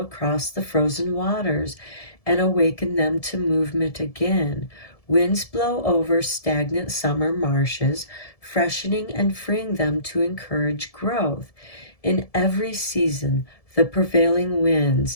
the frozen waters and awaken them to movement again. Winds blow over stagnant summer marshes, freshening and freeing them to encourage growth. In every season, the prevailing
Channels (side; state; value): right; late; 1.7 ms